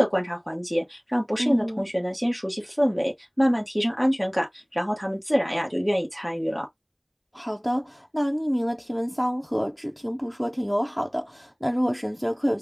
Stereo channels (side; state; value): both; identical; correlation 1.00